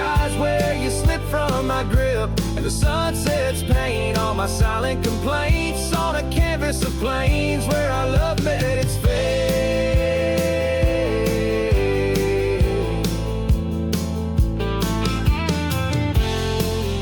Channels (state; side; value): identical; both; correlation 1.00